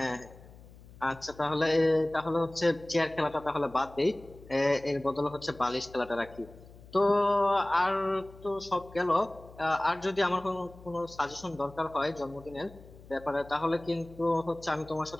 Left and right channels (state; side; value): noise; left; hum, 20 dB below the sound